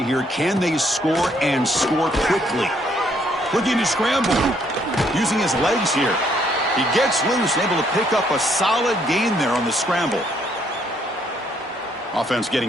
here. Can they score and score quickly? Looking to scramble. Using his legs here. He gets loose and able to pick up a solid gain there on the scramble. Offense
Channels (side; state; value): both; normal; correlation 0.69